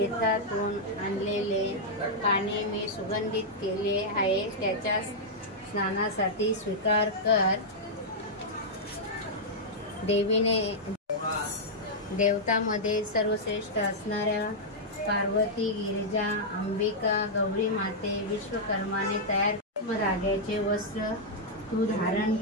आणलेले पाणी मी सुगंधित केले आहे. त्याच्या स्नानासाठी स्वीकार कर. देवीने देवतामध्ये सर्वश्रेष्ठ असणाऱ्या पार्वती, गिरिजा, अंबिका, गौरी माते, विश्वकर्माने तयार धाग्याचे वस्त्र तू धारण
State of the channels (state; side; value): normal; both; correlation -0.07